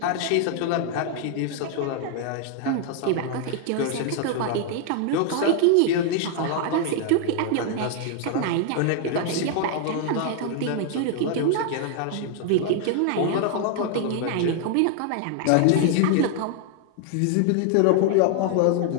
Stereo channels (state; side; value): different; both; correlation 0.00